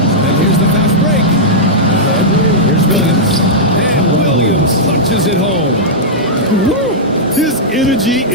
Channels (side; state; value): both; normal; correlation -0.10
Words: And here's the fast break. Here's Williams. And Williams punches it home. Woo! His energy